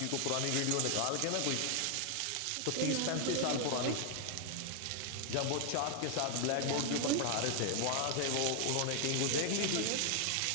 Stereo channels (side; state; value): both; different; correlation 0.00